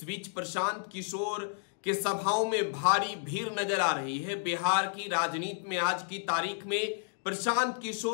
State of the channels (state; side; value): silent; right; digital silence